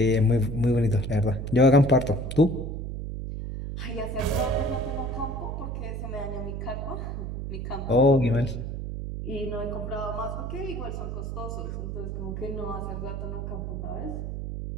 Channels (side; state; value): right; noise; hum, 5 dB below the sound